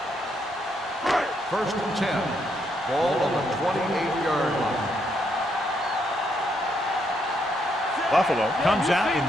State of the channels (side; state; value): both; normal; correlation 0.76